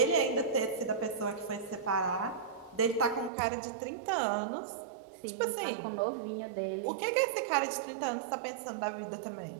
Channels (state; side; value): drops out; left; at 3.3 s